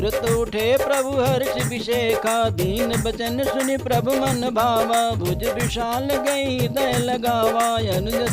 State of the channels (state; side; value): identical; both; correlation 1.00